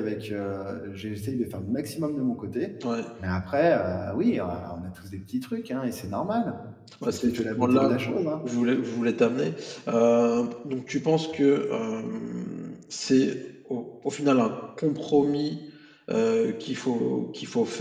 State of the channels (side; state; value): both; identical; correlation 1.00